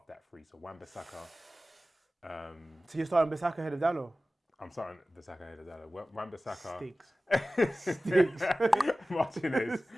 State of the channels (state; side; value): normal; both; correlation 0.96